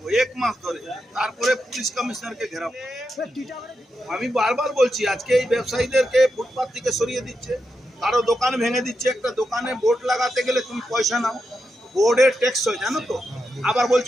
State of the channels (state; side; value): normal; both; correlation 0.86